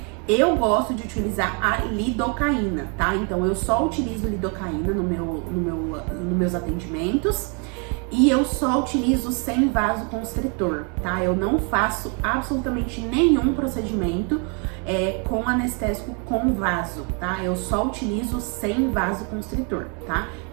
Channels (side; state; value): left; quieter; 36.4 dB